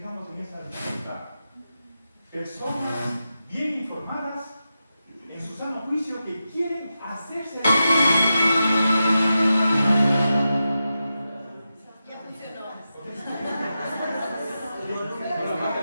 en esa dificultad. Personas bien informadas, en su sano juicio, que quieren hacerse. Ya funcionó.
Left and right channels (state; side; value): inverted; both; correlation -0.90